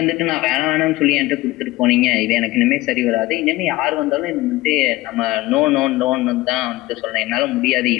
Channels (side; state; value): right; quieter; 18.7 dB